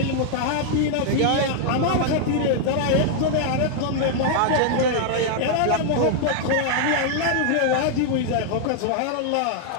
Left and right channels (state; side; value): different; both; correlation 0.00